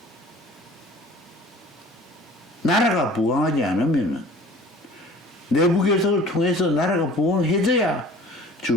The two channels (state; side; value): normal; both; correlation 0.47